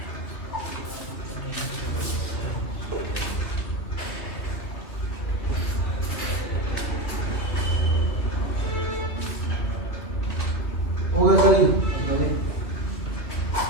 हो गया सर जी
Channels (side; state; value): right; late; 2.7 ms